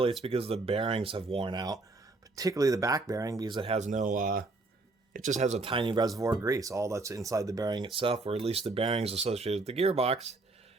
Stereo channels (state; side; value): quieter; left; 3.4 dB